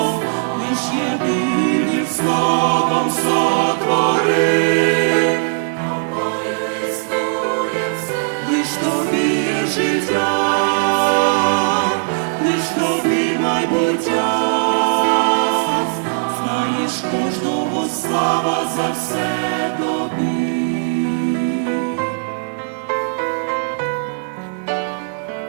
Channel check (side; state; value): left; silent; digital silence